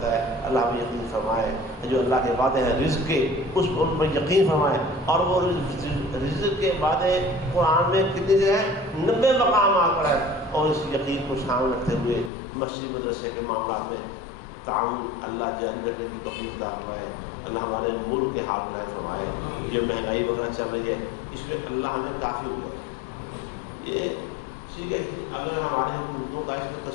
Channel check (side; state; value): right; drops out; at 12.3 s